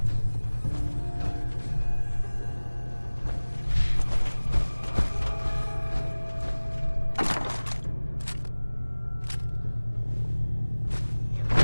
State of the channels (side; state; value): both; inverted; correlation -1.00